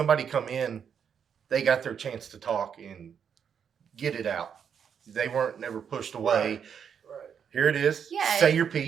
come in, they got their chance to talk and get it out. They weren't never pushed away. right. Here it is. Yeah. Say your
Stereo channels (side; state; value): left; quieter; 7.5 dB